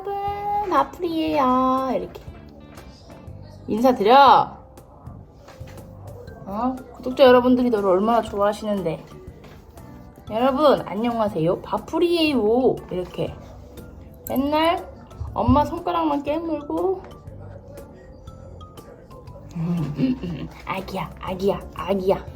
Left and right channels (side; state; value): both; identical; correlation 1.00